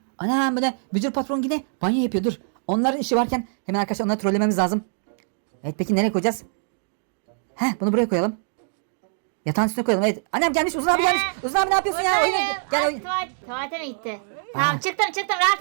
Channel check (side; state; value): left; silent; digital silence